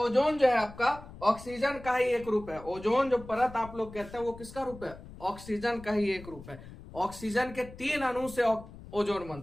जो है आपका ऑक्सीजन का ही एक रूप है। ओजोन जो परत आप लोग कहते हैं वो किसका रूप है, ऑक्सीजन का ही एक रूप है। ऑक्सीजन के 3 अणु से ओजोन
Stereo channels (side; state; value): left; noise; rumble, 16 dB below the sound